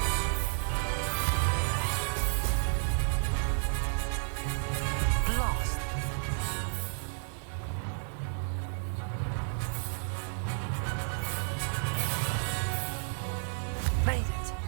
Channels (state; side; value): silent; left; 57 dB below the other